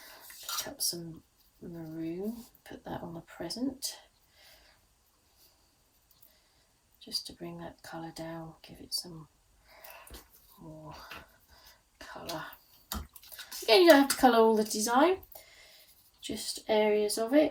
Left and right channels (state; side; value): identical; both; correlation 1.00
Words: Pick up some maroon, put that on the present. Just to bring that colour down, give it some more colour. Again, you don't have to colour all the design, just areas of